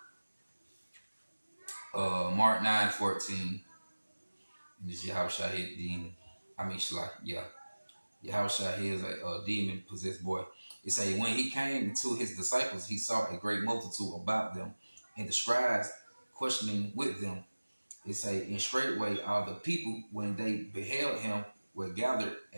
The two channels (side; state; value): both; inverted; correlation -1.00